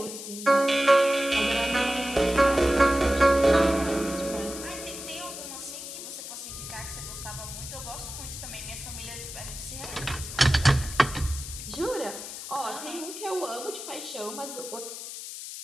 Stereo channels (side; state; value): left; noise; hiss, 9 dB below the sound